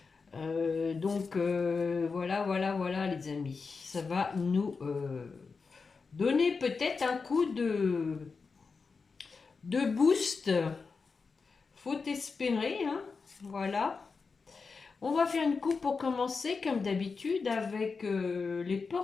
Voilà les amis. Ça va nous donner peut-être un coup de boost. Faut espérer, hein. Voilà. On va faire une coupe pour commencer, comme d'habitude, avec les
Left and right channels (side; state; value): right; quieter; 4.8 dB